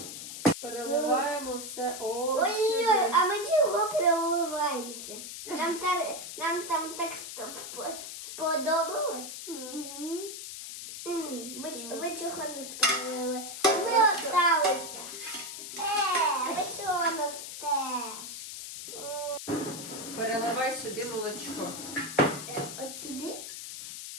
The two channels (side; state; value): left; noise; hiss, 9 dB below the sound